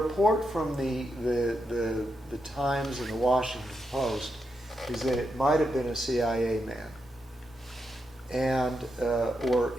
from the Times and the Washington Post is that it might have been a CIA man and or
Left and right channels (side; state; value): both; normal; correlation 0.84